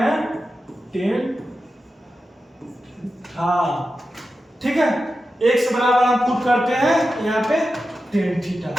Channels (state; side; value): normal; both; correlation 0.91